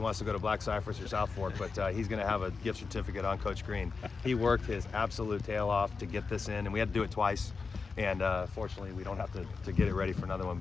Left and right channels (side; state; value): right; quieter; 4.7 dB